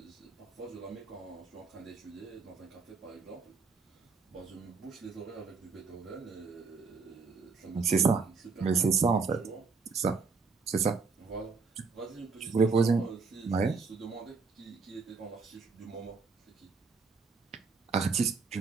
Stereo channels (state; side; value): quieter; left; 4.7 dB